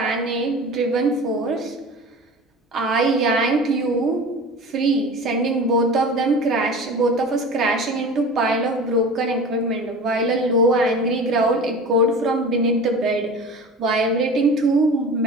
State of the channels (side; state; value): both; normal; correlation 0.36